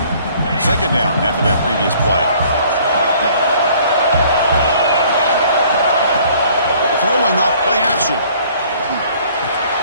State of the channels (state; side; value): inverted; both; correlation -0.57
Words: Second down after that previous play. Throwing off play action.